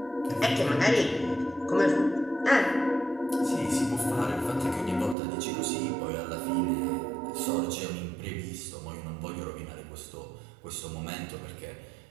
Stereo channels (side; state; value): left; drops out; at 5.2 s